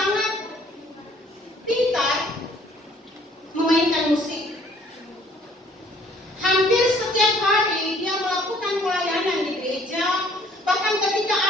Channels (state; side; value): normal; both; correlation 0.59